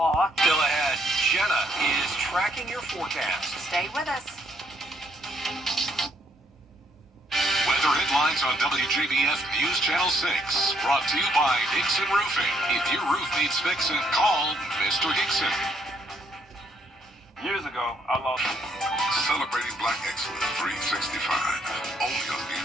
Still ahead, Jenna is tracking your forecast. Stay with us. Weather headlines on WJBF News Channel 6. Brought to you by Hickson Roofing. If your roof needs fixing, call Mr. Hickson. Years ago, I lost. Celebrating Black Excellence 365. Only on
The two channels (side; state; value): both; normal; correlation 0.70